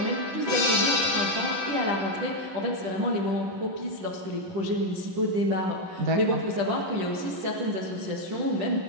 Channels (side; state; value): left; late; 10 ms